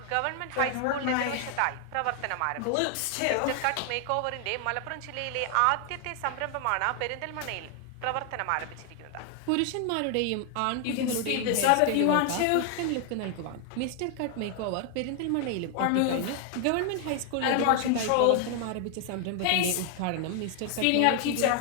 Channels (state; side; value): different; both; correlation 0.00